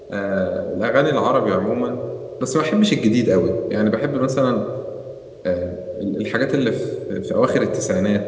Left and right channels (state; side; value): identical; both; correlation 1.00